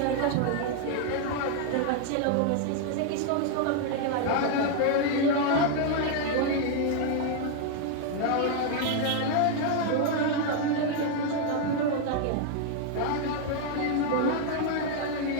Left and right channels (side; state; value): both; different; correlation 0.00